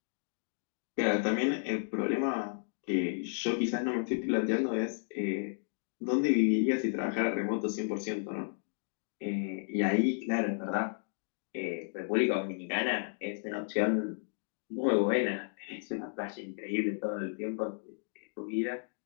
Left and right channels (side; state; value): right; silent; digital silence